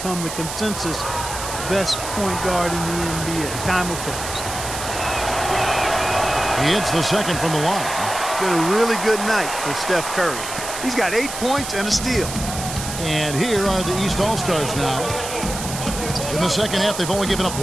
the consensus best point guard in the NBA. Time will tell. He hits the second from the line. Been a really good night for Steph Curry. He's got 8 points and a steal. And here are the East All-Stars now. In the second half, they've only given up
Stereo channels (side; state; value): right; noise; hiss, 7 dB below the sound